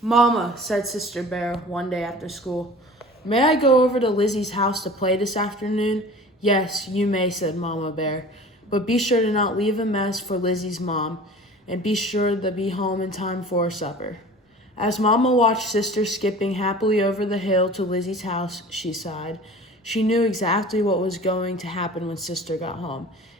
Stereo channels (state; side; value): normal; both; correlation 0.42